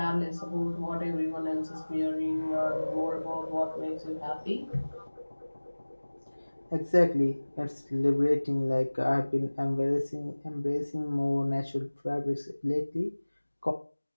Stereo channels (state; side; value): inverted; both; correlation -1.00